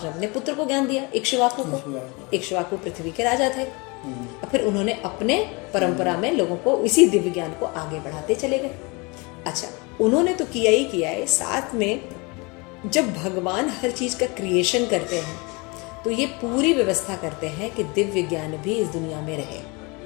अपने पुत्र को ज्ञान दिया, इक्ष्वाकु को। इक्ष्वाकु पृथ्वी के राजा थे। फिर उन्होंने अपने परंपरा में लोगों को इसी दिव्य ज्ञान को आगे बढ़ाते चले गए। अच्छा, उन्होंने तो किया ही किया है, साथ में जब भगवान हर चीज का क्रिएशन करते हैं तो ये पूरी व्यवस्था करते हैं कि दिव्य ज्ञान भी इस दुनिया में रहे।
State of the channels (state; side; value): quieter; right; 27.9 dB